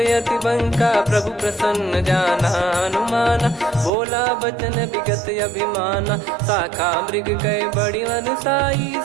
यति बंका प्रभु प्रसन्न जाना हनुमाना बोला बचन विगत अभिमाना शाखा मृग गए बड़ी अनुसाई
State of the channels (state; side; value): drops out; left; at 3.9 s